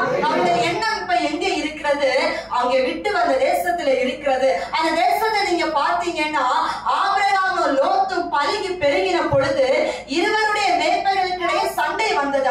அவருடைய எண்ணம் இப்ப எங்க இருக்கிறது? அவங்க விட்டு வந்த தேசத்துல இருக்கிறது. அந்த தேசத்தை நீங்க பாத்தீங்கன்னா ஆபிரகாமும் லோத்தும் பலுகி பெருகின பொழுது இருவருடைய மேய்ப்பர்களுக்கிடையே சண்டை வந்தது.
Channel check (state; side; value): identical; both; correlation 1.00